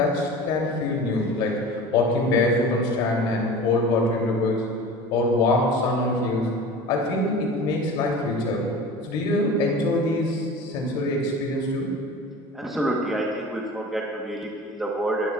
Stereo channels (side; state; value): both; normal; correlation 0.37